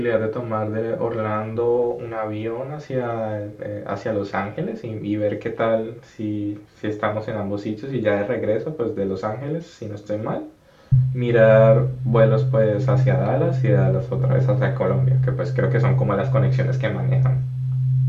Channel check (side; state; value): both; identical; correlation 1.00